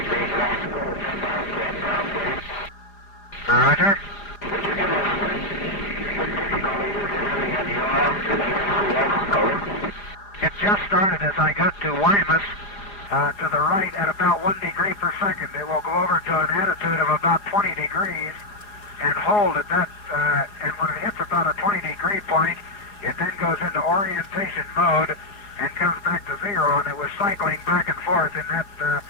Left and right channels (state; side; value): late; right; 4.9 ms